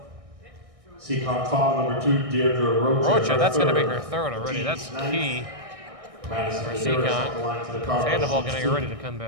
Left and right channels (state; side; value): late; left; 1.6 ms